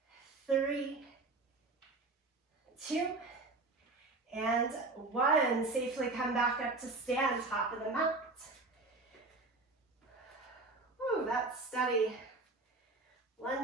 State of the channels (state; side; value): quieter; left; 3.4 dB